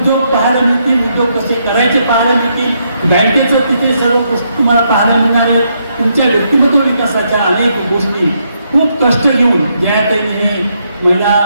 पाहायला मिळतील, उद्योग कसे करायचे पाहायला मिळतील, बँकेचं तिथे सर्व गोष्टी तुम्हाला पाहायला मिळणार आहे. तुमच्या व्यक्तिमत्व विकासाच्या अनेक गोष्टी खूप कष्ट घेऊन जाहिरातीने हे महिला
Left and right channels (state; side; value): inverted; both; correlation -0.77